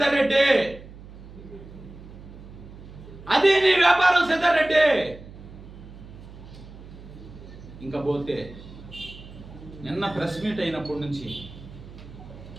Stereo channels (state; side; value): noise; right; hum, 17 dB below the sound